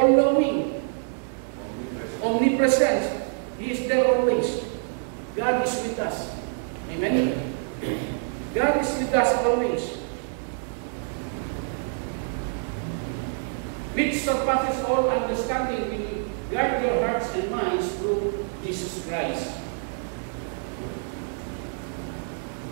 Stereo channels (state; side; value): silent; left; digital silence